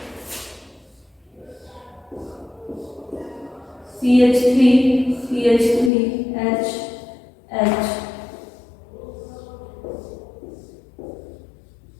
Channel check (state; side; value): drops out; right; at 5.9 s